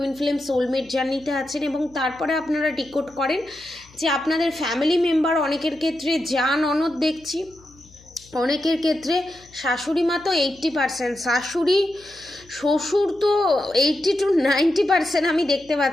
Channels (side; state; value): left; noise; hum, 26 dB below the sound